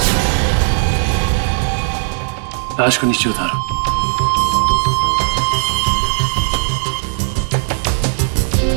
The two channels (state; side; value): silent; left; digital silence